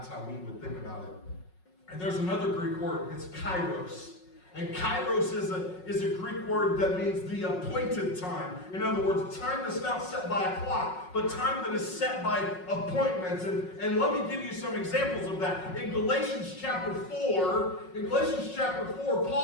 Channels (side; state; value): right; late; 5.5 ms